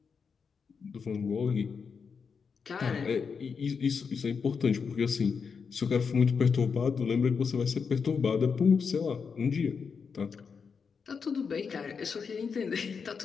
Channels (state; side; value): quieter; right; 5.8 dB